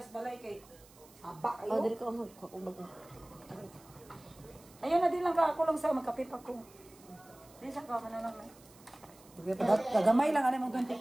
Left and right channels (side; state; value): right; noise; hiss, 25 dB below the sound